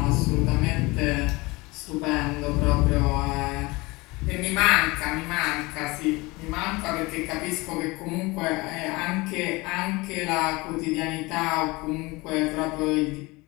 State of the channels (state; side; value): quieter; right; 23.4 dB